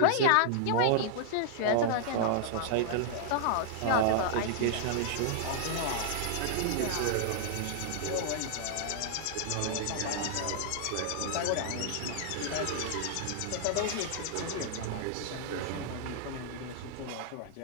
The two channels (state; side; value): different; both; correlation -0.01